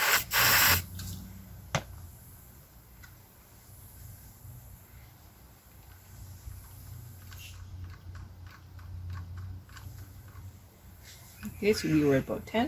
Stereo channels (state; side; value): identical; both; correlation 1.00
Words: Okay, so we were at about